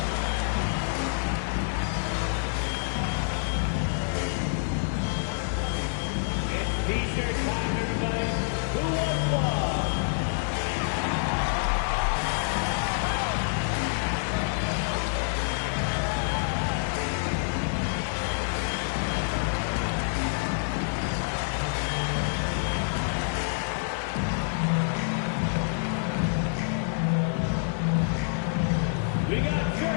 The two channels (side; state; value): right; silent; digital silence